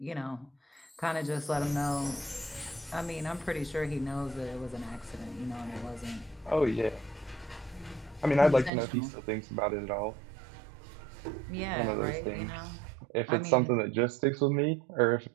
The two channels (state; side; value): drops out; left; at 8.7 s